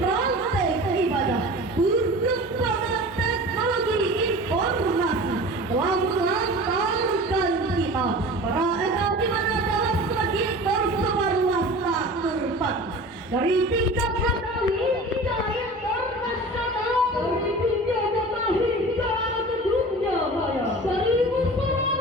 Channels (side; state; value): both; normal; correlation 0.38